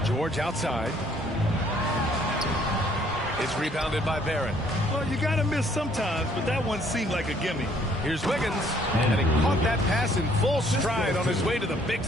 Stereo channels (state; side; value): normal; both; correlation 0.63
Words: George outside. It's rebounded by Barrett. Well, you got to miss sometimes, but that one seemed like a gimme. Here's Wiggins, and he caught that pass in full stride on his way to the big